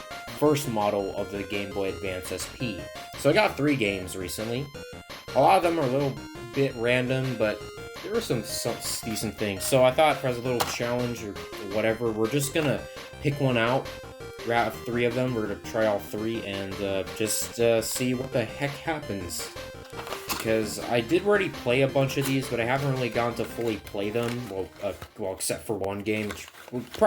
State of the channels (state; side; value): identical; both; correlation 1.00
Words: first model of the Game Boy Advance SP. So I got 3 games recently. A lot of them are a little bit random, but there were some decent things. So I thought for as a little challenge or whatever, we're just gonna pick one out. Out of 3 of them, we're gonna try all 3 and just see what the heck happens. Because I did already play a bunch of these, but I haven't really gotten to fully play them. Well, except for one game, which would